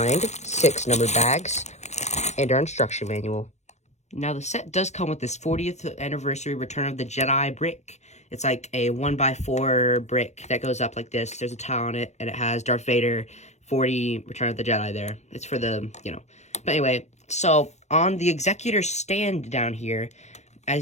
6 numbered bags and our instruction manual. Now, the set does come with this 40th anniversary Return of the Jedi brick. It's like a 1x4 brick that goes up like this. There's a tile on it, and it has Darth Vader 40 Return of the Jedi there. It's for the, But anyway, so on the Executor stand down here,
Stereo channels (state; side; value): late; right; 0.33 ms